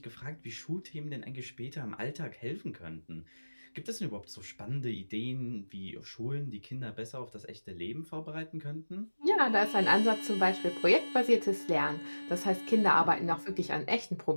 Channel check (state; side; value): inverted; both; correlation -1.00